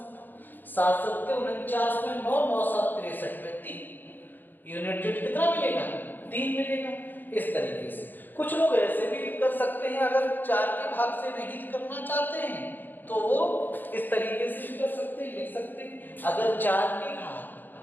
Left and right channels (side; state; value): right; late; 0.089 ms